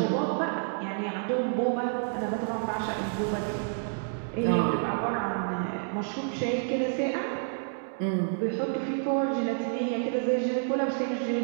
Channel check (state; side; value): silent; left; digital silence